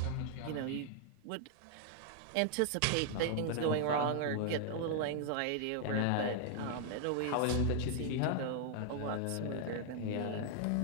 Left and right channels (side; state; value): both; different; correlation 0.00